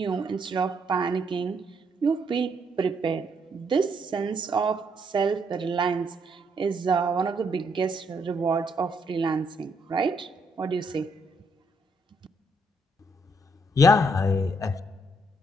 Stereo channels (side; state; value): both; normal; correlation 0.73